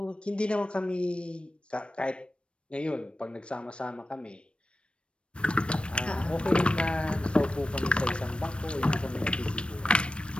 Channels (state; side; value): late; right; 0.058 ms